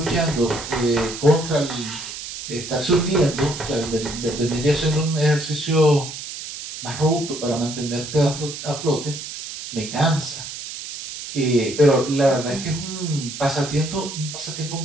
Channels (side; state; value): right; noise; hiss, 9 dB below the sound